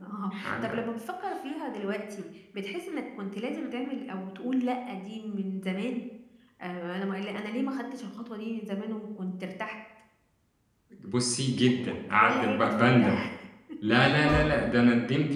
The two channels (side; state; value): both; identical; correlation 1.00